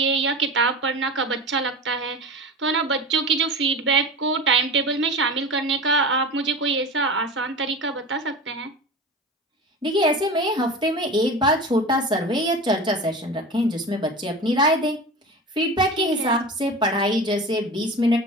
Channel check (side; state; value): both; normal; correlation 0.30